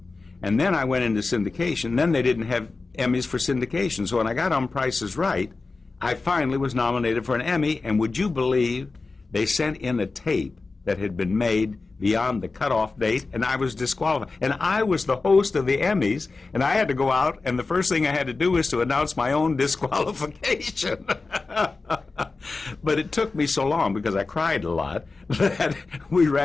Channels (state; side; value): quieter; right; 3.8 dB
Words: And then I went into syndication. Then they didn't have Emmys for syndication. So when I got on Price is Right, I finally was nominated for an Emmy. And would you believe they sent in a tape that had been made beyond the cutoff date, and I was disqualified. And I was the host of the Emmys, and I had to go out, and the first thing I had to do was to announce my own disqualification. But it took me so long, because I cried a lot, that we